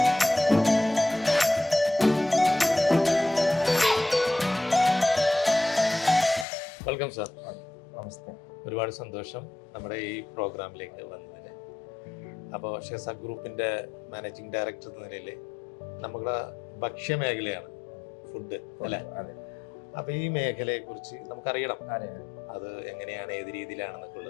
Welcome sir. നമസ്തേ. ഒരുപാട് സന്തോഷം നമ്മുടെ ഈ പ്രോഗ്രാമിലേക്ക് വന്നതിന്. അപ്പോൾ ഷെയർസാ ഗ്രൂപ്പിൻ്റെ മാനേജിംഗ് ഡയറക്ടർ എന്ന നിലയിൽ നമ്മുടെ ഭക്ഷ്യമേഖലയാണ് ഫുഡ് അല്ലേ? അപ്പോൾ ഈ മേഖലയെക്കുറിച്ച് നമുക്കറിയണം. അത് എങ്ങനെയാണ്, ഏത് രീതിയിലാണെന്നൊക്കെ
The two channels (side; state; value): right; drops out; at 6.5 s